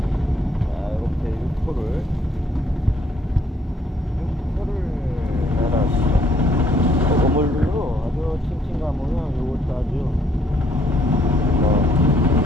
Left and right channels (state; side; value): normal; both; correlation 0.66